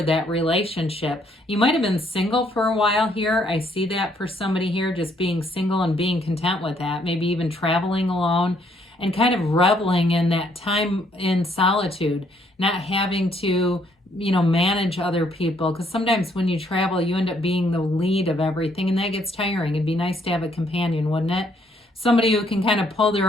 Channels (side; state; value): both; normal; correlation 0.68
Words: that relationship. You might have been single for a while here. I see that for somebody here, just being single and being content with that, maybe even traveling alone and kind of reveling in that time in solitude, not having to, manage other people. Because sometimes when you travel, you end up being the lead of everything, and that gets tiring. It'd be nice to have a companion, wouldn't it? Somebody who can kind of pull